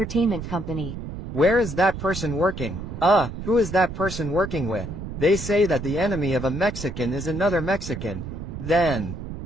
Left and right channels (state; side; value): noise; right; rumble, 8 dB below the sound